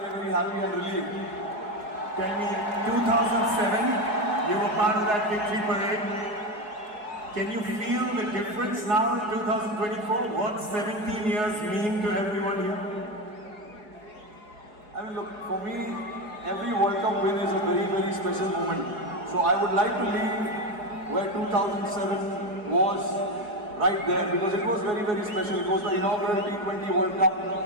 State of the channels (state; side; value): late; left; 4.7 ms